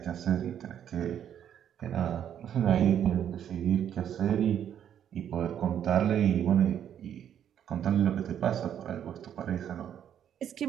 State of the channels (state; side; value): quieter; left; 9.6 dB